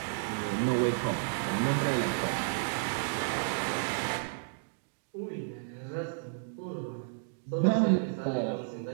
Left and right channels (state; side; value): silent; left; digital silence